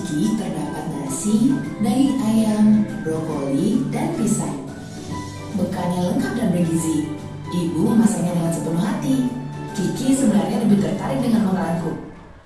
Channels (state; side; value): identical; both; correlation 1.00